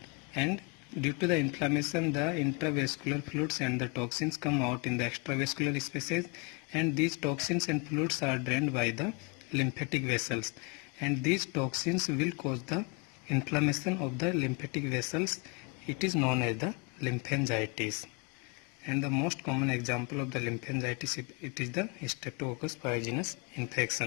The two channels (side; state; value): right; quieter; 31.2 dB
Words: and due to the inflammation the intravascular fluids and the toxins come out in the extravascular spaces, and these toxins and fluids are drained by the lymphatic vessels, and these toxins will cause the inflammation of the lymphatic vessels. It is known as the lymphangitis. And the most common example of the lymphangitis, it is the Streptococcus pyogenes